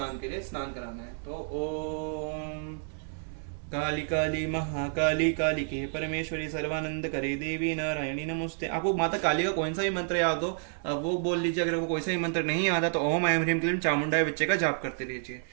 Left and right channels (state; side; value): silent; left; 58 dB below the other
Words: के लिए स्नान कराना है। तो ओम काली काली महाकाली कालिके परमेश्वरी सर्वानंद करे देवी नारायणी नमस्ते। आपको माता काली का कोई सा भी मंत्र याद हो वो बोल लीजिए। अगर आपको कोई सा भी मंत्र नहीं आता तो ओम ऐं ह्रीं क्लीं चामुंडाय विच्चे का जाप करते रहिए।